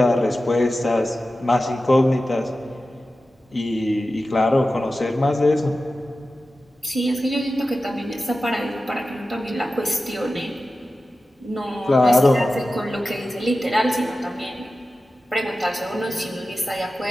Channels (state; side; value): normal; both; correlation 0.94